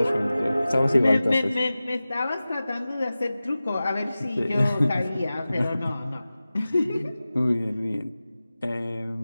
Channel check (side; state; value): both; inverted; correlation -0.96